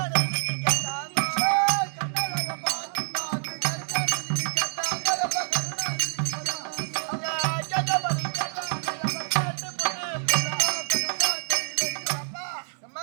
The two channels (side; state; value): left; silent; 60 dB below the other